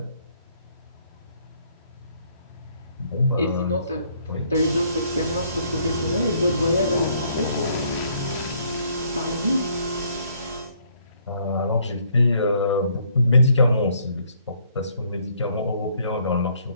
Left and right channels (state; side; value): inverted; both; correlation -0.66